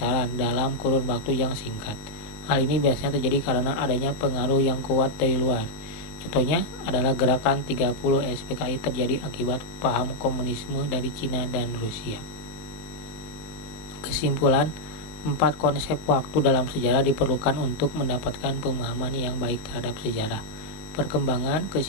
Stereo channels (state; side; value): late; right; 19 ms